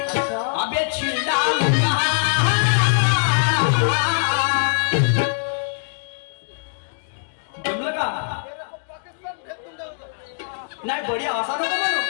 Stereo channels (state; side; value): silent; right; digital silence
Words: अबे छिंडा जमलं का नाही? बढिया असा नको म्हणू,